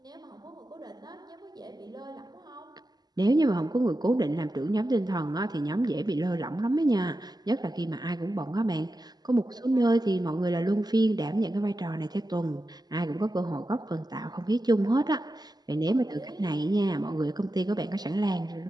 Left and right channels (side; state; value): left; late; 0.20 ms